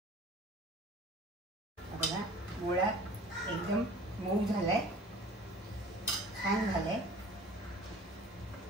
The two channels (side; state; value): both; normal; correlation 0.45